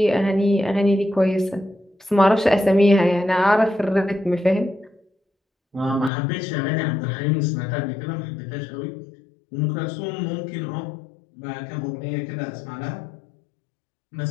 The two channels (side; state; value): right; drops out; at 6.1 s